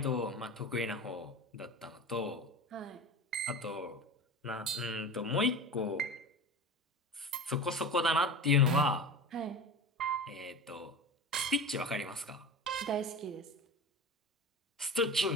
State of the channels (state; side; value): normal; both; correlation 0.32